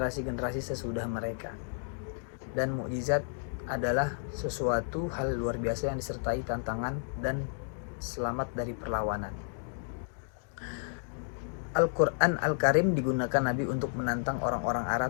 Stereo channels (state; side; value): silent; right; digital silence